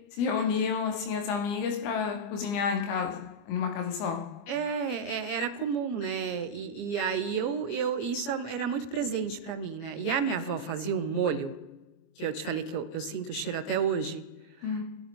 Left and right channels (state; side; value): late; right; 25 ms